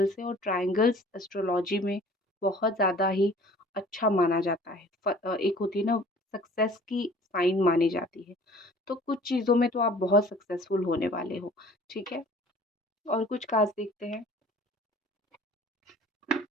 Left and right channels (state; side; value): normal; both; correlation 0.49